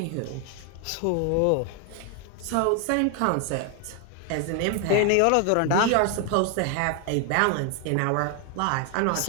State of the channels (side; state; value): both; different; correlation 0.01